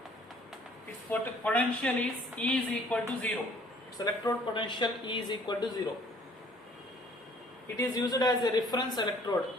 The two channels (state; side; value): normal; both; correlation 0.57